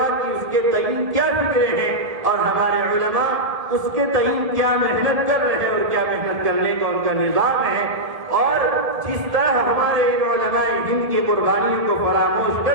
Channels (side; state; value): left; late; 1.5 ms